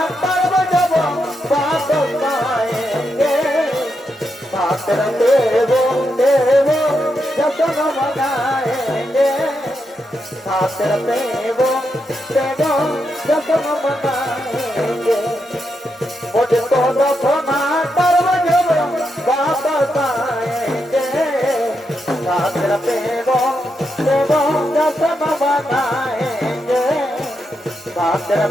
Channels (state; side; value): normal; both; correlation 0.83